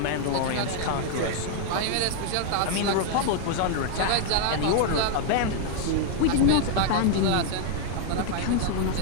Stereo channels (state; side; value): different; both; correlation -0.01